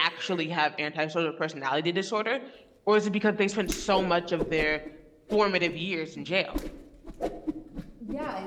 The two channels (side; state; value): both; identical; correlation 1.00